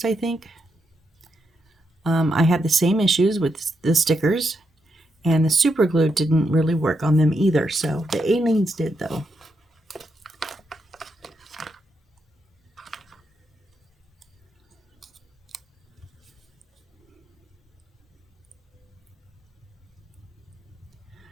I think, I had the same issues with the stickers, and the super glue didn't really work on them either. So the Aleene's did though.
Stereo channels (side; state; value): both; normal; correlation 0.82